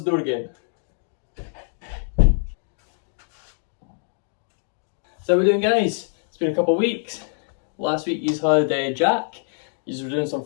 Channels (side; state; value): right; silent; digital silence